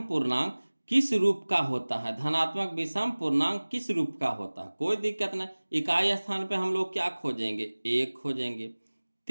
पूर्णांक किस रूप का होता है, धनात्मक विषम पूर्णांक किस रूप का होता है। कोई दिक्कत नहीं, इकाई स्थान पे हम लोग क्या खोजेंगे, 1 खोजेंगे,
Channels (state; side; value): inverted; both; correlation -1.00